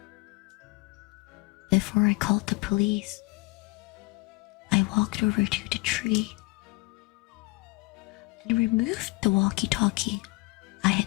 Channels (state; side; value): quieter; right; 25.3 dB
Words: Before I called the police, I walked over to the tree and removed the walkie-talkie I